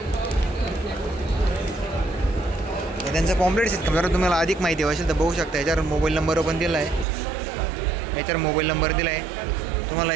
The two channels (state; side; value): drops out; left; at 7.1 s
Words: हे त्यांचं पॉम्पलेट आहे. जर तुम्हाला अधिक माहिती हवी असेल तर बघू शकता. याच्यावर मोबाईल नंबर पण दिला आहे. याच्यावर मोबाईल नंबर दिला आहे. तुम्हाला